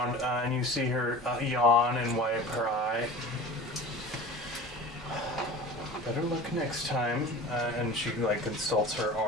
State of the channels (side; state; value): both; normal; correlation 0.37